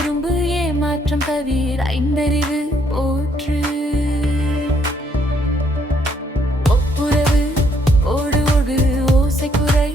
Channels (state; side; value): normal; both; correlation 0.69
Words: ஏமாற்றம் தவிர ஐந்தறிவு போற்று ஒப்புரவு ஓடு ஓடு ஓசைக்குறை